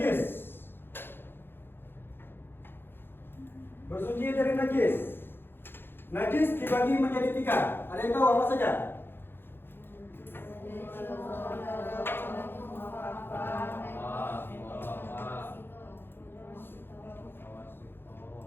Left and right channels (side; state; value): right; late; 0.10 ms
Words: Bersuci dari najis. Najis dibagi menjadi 3. Ada yang tahu apa saja?